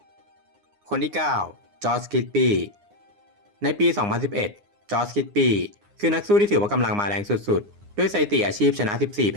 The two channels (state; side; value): late; left; 9.7 ms